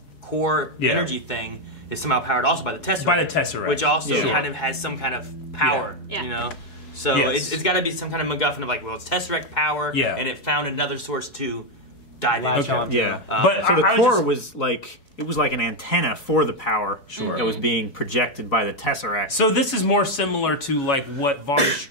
core energy thing is somehow powered also by the Tesseract. By the Tesseract. Which also Yeah. kind of has some kind of power, Yeah. you know? So Yes. it's got to be some kind of MacGuffin of, like, well, it's Tesseract power, Yeah. and it found another source to dive Latch into. on. Yeah. But So the I was core just- was like it was like an antenna for the power that was being projected by the Tesseract. So this is more similar to like what Von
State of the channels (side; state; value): right; late; 4.7 ms